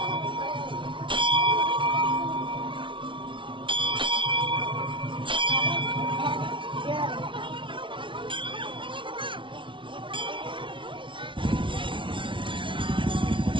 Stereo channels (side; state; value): left; late; 0.25 ms